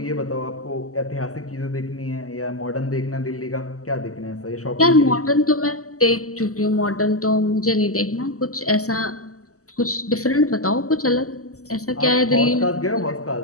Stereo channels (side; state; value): right; late; 0.66 ms